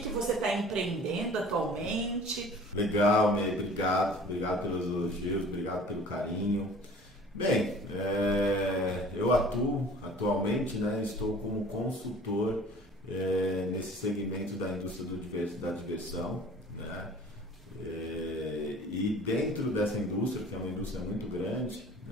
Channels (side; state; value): both; normal; correlation 0.47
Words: você está empreendendo atualmente. Legal, Ney, obrigado pelos elogios, obrigado pelo carinho. Bem, eu atuo atualmente, estou como consultor nesse segmento da indústria da diversão, e dentro dessa indústria, que é uma indústria muito grande,